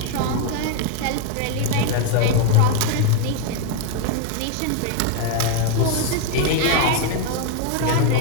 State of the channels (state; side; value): different; both; correlation 0.01